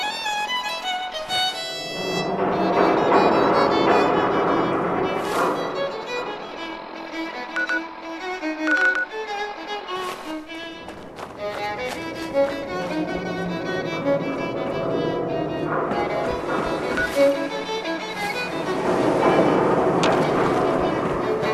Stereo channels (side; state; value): both; identical; correlation 1.00